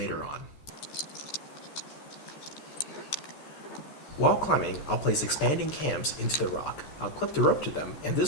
on. While climbing, I'll place expanding cams into the rock. I'll clip the rope to them, and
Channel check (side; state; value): right; late; 14 ms